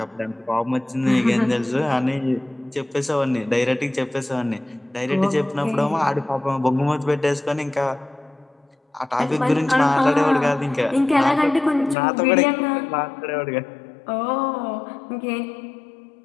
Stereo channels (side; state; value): right; drops out; at 12.0 s